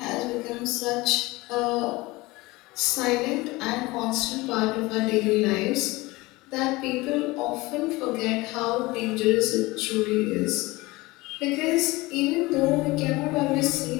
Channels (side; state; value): right; quieter; 21.5 dB